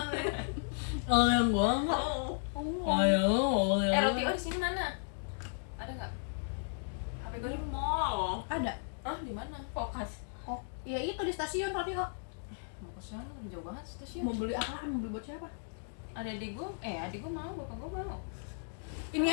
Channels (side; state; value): right; silent; digital silence